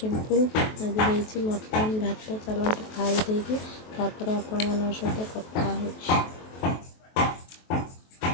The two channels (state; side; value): late; right; 23 ms